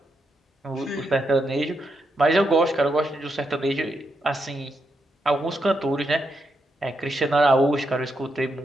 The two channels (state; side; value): normal; both; correlation 0.82